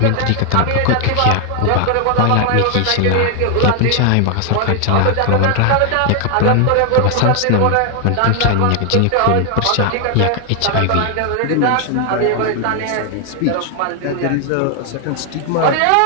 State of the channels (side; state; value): both; different; correlation 0.00